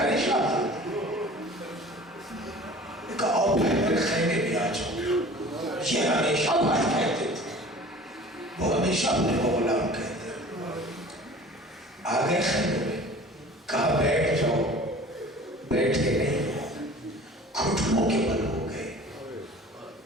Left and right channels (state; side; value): normal; both; correlation 0.44